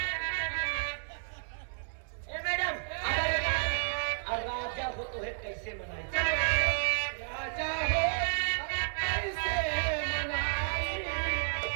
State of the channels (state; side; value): silent; left; digital silence